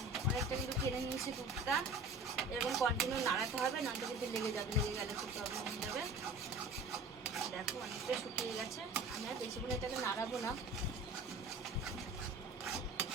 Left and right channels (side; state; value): left; quieter; 3.2 dB